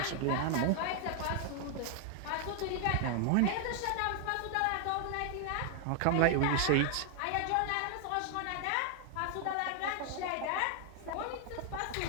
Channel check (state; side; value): different; both; correlation 0.00